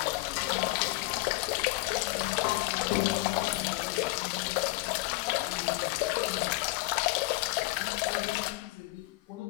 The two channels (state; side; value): quieter; right; 20.5 dB